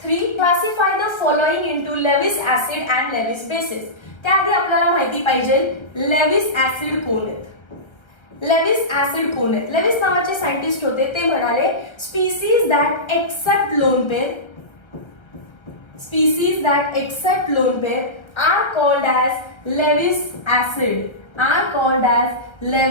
3. Classify the following into Lewis acid and Lewis bases. त्याआधी आपल्याला माहिती पाहिजे लेविस ऍसिड कोण आहेत. लेविस ऍसिड कोण आहेत. लेविस नावाचे सायंटिस्ट होते, ते म्हणाले species that accept lone pair, species that accept lone pair are called as Lewis acid, are called as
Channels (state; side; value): late; right; 1.2 ms